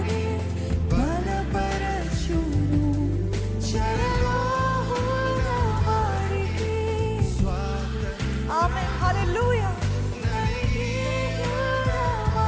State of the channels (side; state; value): both; identical; correlation 1.00